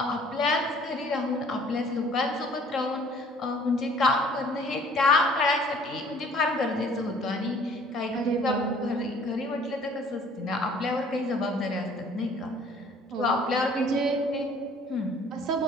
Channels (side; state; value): both; normal; correlation 0.55